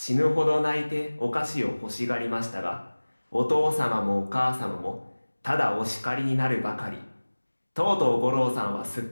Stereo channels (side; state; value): both; inverted; correlation -1.00